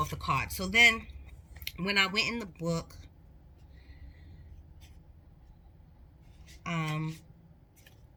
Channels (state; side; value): identical; both; correlation 1.00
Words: the card. So then when I went in the book, um